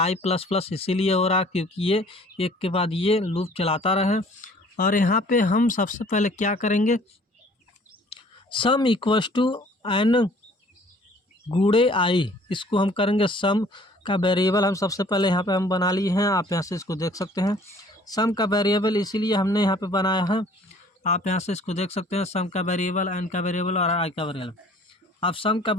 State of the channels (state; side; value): normal; both; correlation 0.54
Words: प्लस प्लस इसीलिए हो रहा क्योंकि ये एक के बाद ये लूप चलाता रहे। और यहाँ पे हम सबसे पहले क्या करेंगे, सम इक्वल्स टू एन गुणे आई, इसको हम करेंगे सम का वेरिएबल। हम सबसे पहले यहाँ पे हम बना लिए हैं, आप यहाँ से इसको देख सकते हैं। सम का वेरिएबल इसीलिए हमने यहाँ पे बनाया है, आप यहाँ से इसको देख सकते हैं। सम का वेरिएबल, एन का वेरिएबल और आई का वेरिएबल। आप सम का